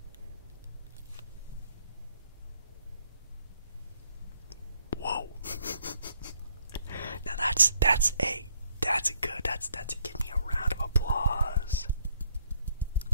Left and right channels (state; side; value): inverted; both; correlation -0.70